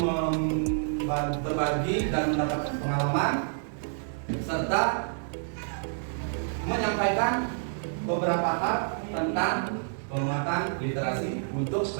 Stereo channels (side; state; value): left; silent; digital silence